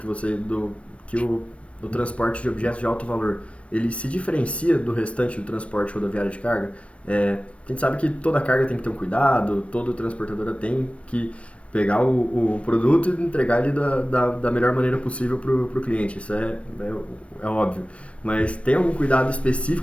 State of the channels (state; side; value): late; right; 0.062 ms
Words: que o transporte de objetos de alto valor ele se diferencia do restante do transporte rodoviário de carga? A gente sabe que toda carga tem que ter um cuidado, toda transportadora tem que pegar o produto e entregar ele da melhor maneira possível para o cliente. Isso é óbvio. Mas tem algum cuidado